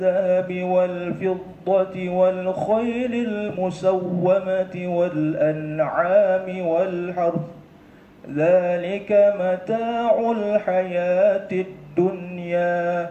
والفضة والخيل المسومة والأنعام والحرث ذلك متاع الحياة الدنيا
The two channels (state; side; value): identical; both; correlation 1.00